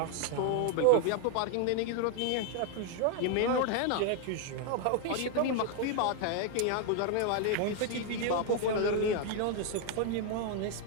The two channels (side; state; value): both; different; correlation 0.00